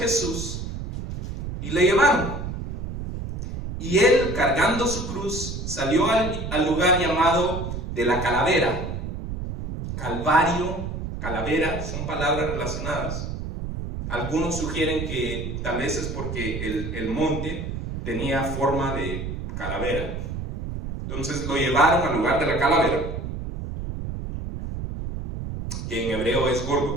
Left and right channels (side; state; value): right; noise; rumble, 5 dB below the sound